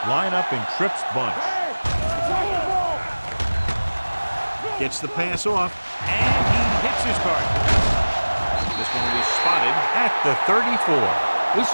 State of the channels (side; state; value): both; inverted; correlation -1.00